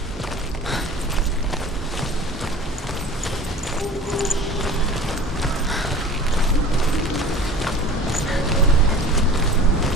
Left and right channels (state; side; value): normal; both; correlation 0.42